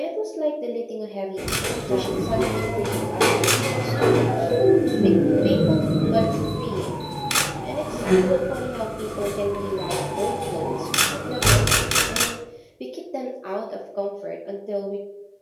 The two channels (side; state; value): both; identical; correlation 1.00